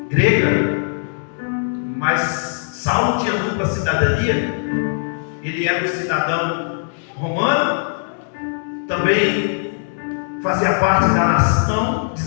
grega, mas Saulo tinha dupla cidadania. Ele era um cidadão romano, também fazia parte da nação de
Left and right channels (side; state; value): right; silent; digital silence